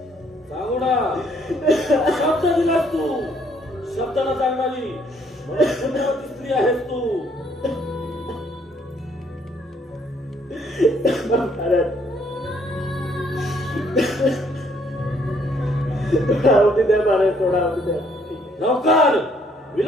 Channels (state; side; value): normal; both; correlation 0.66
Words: सांगू ना शब्द दिलास तू, शब्दाला सांगणारी पुण्यवती स्त्री आहेस तू. महाराज, थोडा अवधी द्या महाराज, थोडा अवधी द्या. ठीक आहे. लवकर